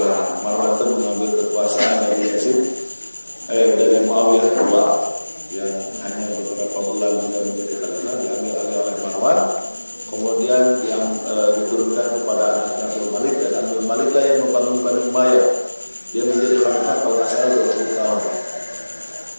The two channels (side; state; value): both; inverted; correlation -1.00